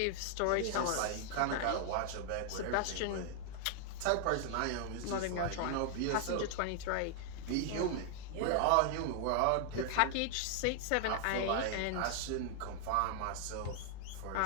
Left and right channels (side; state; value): both; different; correlation 0.00